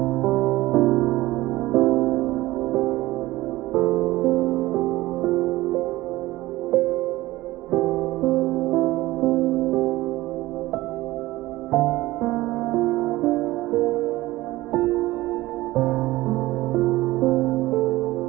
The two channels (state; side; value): quieter; left; 18.1 dB